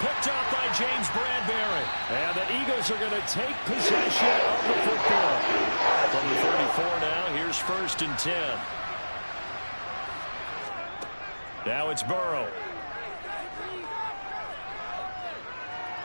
Picked up by James Bradbury. And the Eagles are going to take possession of the football. From the 34 now, here's 1st and 10. Now it's Burrow.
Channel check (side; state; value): both; inverted; correlation -1.00